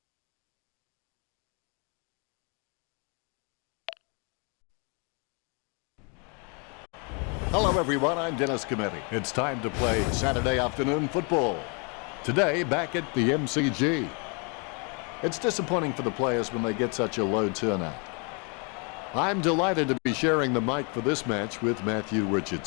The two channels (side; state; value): right; quieter; 34.9 dB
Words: Hello everyone, I'm Dennis Cometti. It's time to play Saturday afternoon football. Today, back at the MCG. It's disappointing for the players when they get such a low turnout. I'm delighted to be sharing the mic for this match with Matthew